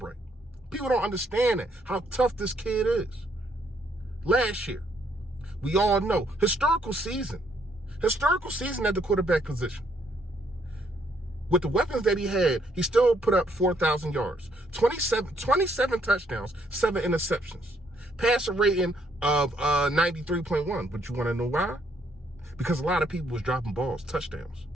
People don't understand that, how tough this kid is. Last year, we all know, historical season at the quarterback position. With the weapons that he had, he still put up 4,000 yards, 27 touchdowns, 7 interceptions, passer rating of 93.1. But you want to know why? Because a lot of people was dropping balls, touchdowns.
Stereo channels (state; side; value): normal; both; correlation 0.70